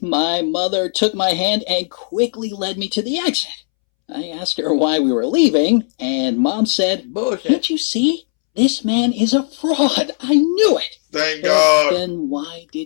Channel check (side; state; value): right; silent; 67 dB below the other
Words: my mother took my hand and quickly led me to the exit. I asked her why we were leaving, and Mom said, Bullshit. "Can't you see? This man is a fraud. I knew it." Thank But God. then why